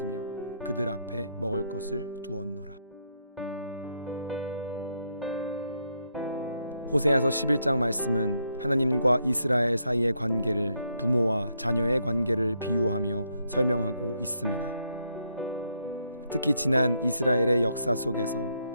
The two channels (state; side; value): inverted; both; correlation -0.77